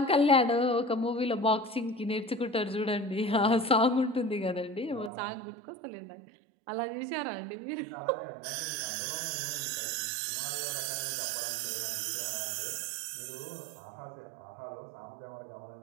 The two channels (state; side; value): drops out; left; at 5.1 s